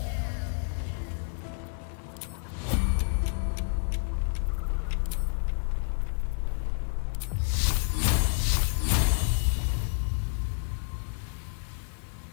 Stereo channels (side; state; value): right; silent; digital silence